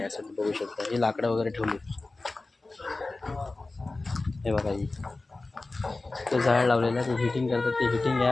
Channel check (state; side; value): quieter; right; 3.3 dB